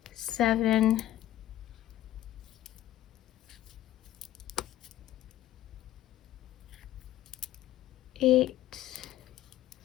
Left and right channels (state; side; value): quieter; right; 13.5 dB